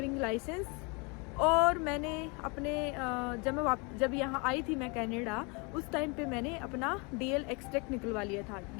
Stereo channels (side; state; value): right; quieter; 30.9 dB